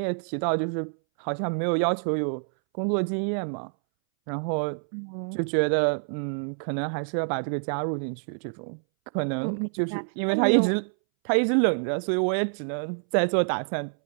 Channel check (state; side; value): silent; left; 60 dB below the other